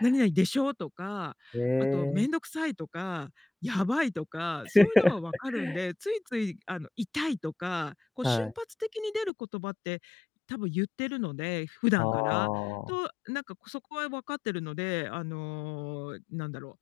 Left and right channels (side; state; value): right; drops out; at 9.3 s